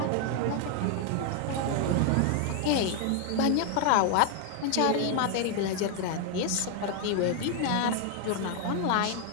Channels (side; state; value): both; different; correlation 0.00